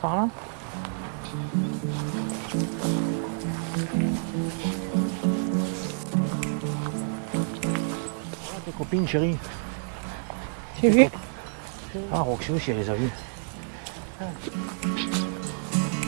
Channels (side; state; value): left; silent; 59 dB below the other